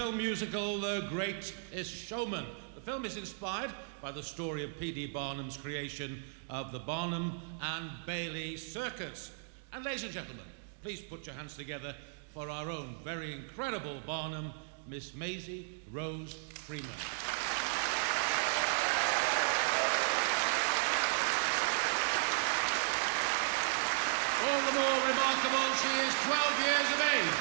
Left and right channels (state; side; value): silent; left; digital silence